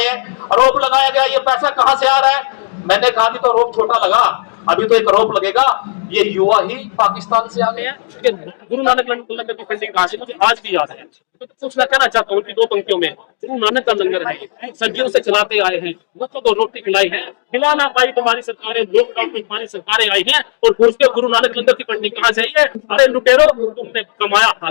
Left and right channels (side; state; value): right; silent; 64 dB below the other